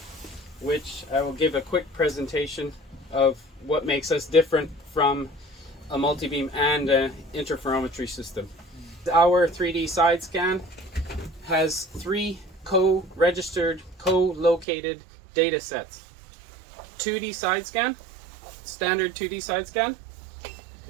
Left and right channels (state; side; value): drops out; left; at 14.7 s